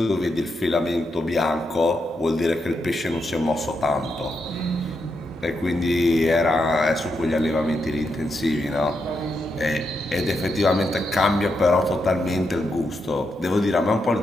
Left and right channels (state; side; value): normal; both; correlation 0.83